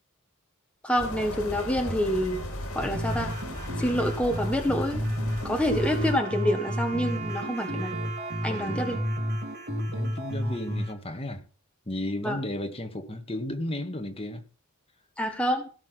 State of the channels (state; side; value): normal; both; correlation 0.74